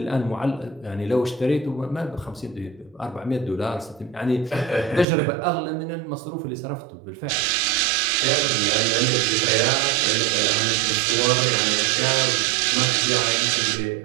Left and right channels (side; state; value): left; drops out; at 5.1 s